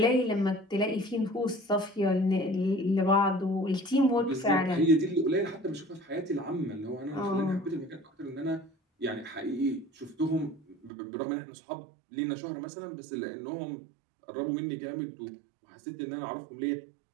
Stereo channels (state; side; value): drops out; left; at 10.9 s